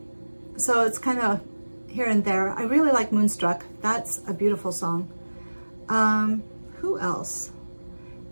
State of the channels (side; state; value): both; inverted; correlation -1.00